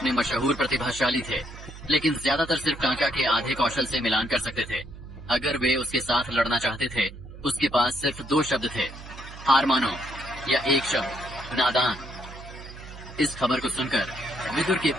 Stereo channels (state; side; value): noise; right; hum, 14 dB below the sound